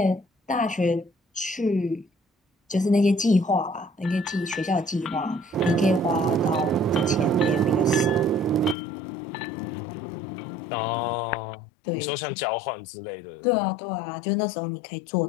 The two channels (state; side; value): drops out; right; at 8.8 s